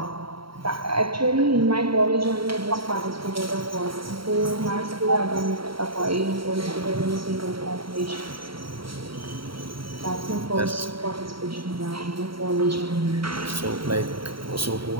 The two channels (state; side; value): late; left; 0.74 ms